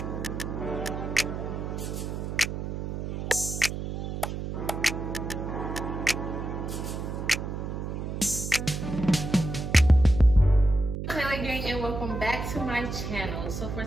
And welcome back to my channel. So for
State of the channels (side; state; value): right; noise; hum, 5 dB below the sound